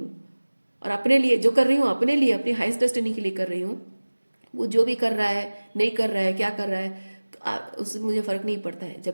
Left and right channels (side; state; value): both; inverted; correlation -1.00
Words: और अपने लिए जो कर रही हूँ, अपने लिए, अपनी हाईएस्ट डेस्टिनी के लिए कर रही हूँ, वो जो भी कर रहा है, नहीं कर रहा है, क्या कर रहा है, तो उससे मुझे फ़र्क नहीं पड़ता है। जब